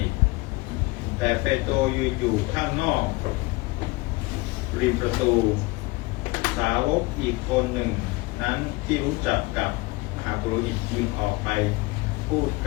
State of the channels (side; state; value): right; quieter; 23.2 dB